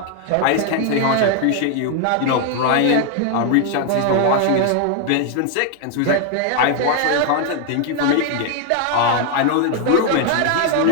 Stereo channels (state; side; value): different; both; correlation 0.00